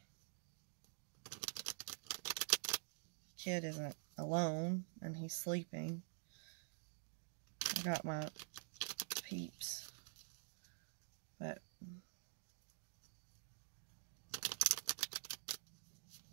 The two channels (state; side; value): silent; left; digital silence